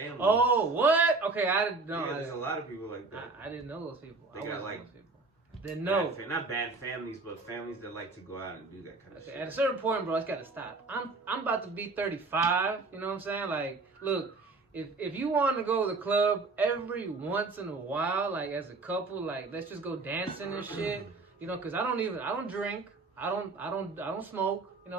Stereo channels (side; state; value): left; quieter; 3.8 dB